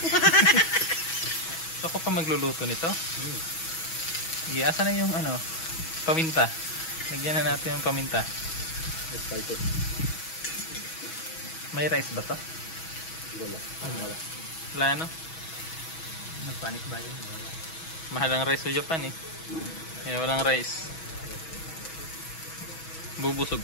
Ako pa magluluto nito. Asa na yung ano, paminta. Lagyan na natin yung paminta. Spices. May rice ba to? Wala. Wala. Wala no? Nagpanic ba yun? Wala. Mahal ang rice sa Japan eh. Kaya walang rice. Bubusog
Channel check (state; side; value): late; right; 6.2 ms